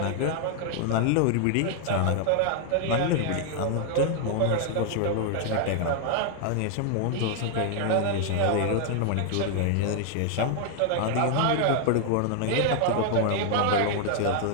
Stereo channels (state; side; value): different; both; correlation 0.00